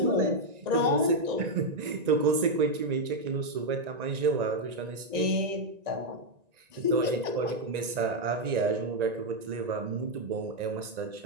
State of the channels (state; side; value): late; left; 1.9 ms